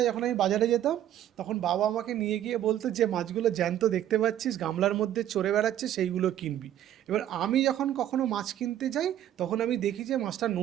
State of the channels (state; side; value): quieter; left; 11.6 dB